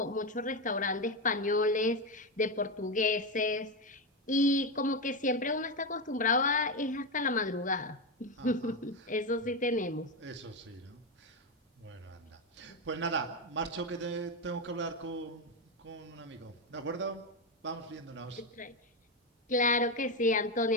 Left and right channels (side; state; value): both; normal; correlation 0.11